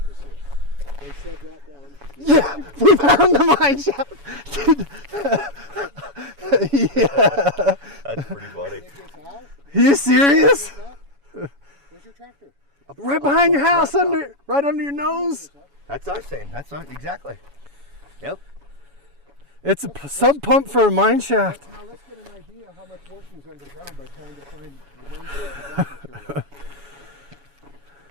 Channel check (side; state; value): left; late; 7.1 ms